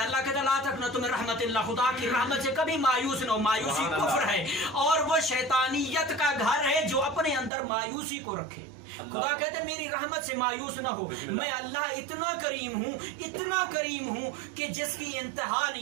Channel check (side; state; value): left; drops out; at 7.5 s